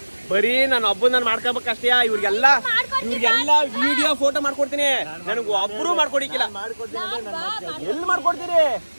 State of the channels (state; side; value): inverted; both; correlation -1.00